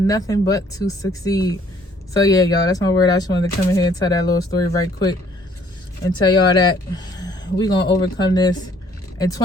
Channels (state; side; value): normal; both; correlation 0.61